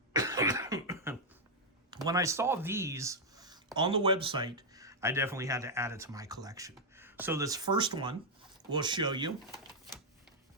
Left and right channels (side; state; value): both; normal; correlation -0.03